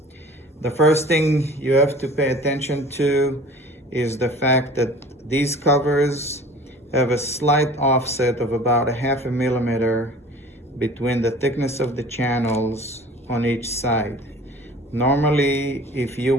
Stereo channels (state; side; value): normal; both; correlation 0.44